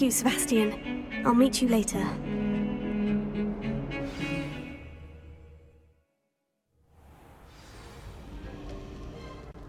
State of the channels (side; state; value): both; identical; correlation 1.00